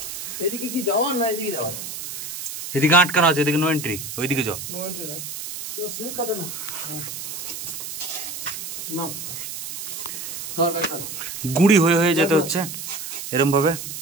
এদিকে কি যাওয়ার না এদিকে যাওয়ার? এদিকে আটকানো আছে, এদিকে নো এন্ট্রি, ওইদিকে যাও। নো এন্ট্রি না, তো সিল কাটে না। নাও গুড়ি হয়ে হয়ে যেতে হচ্ছে এরম ভাবে।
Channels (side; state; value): right; noise; hiss, 7 dB below the sound